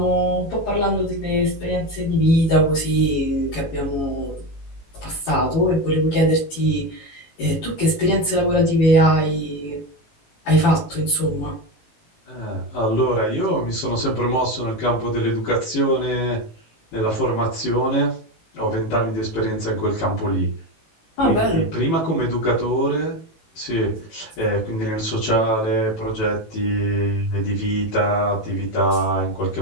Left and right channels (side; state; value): right; late; 18 ms